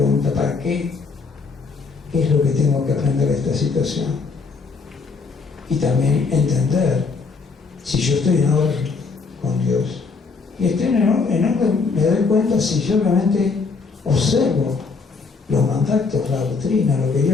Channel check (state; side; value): quieter; right; 4.6 dB